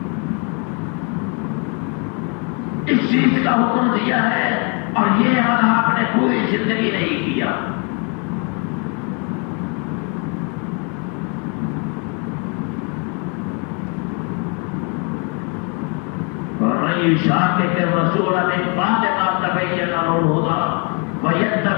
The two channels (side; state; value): right; quieter; 35.2 dB